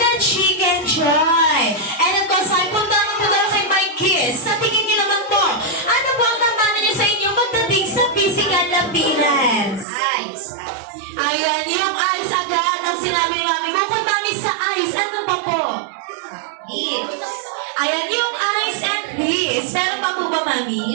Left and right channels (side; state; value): left; drops out; at 9.9 s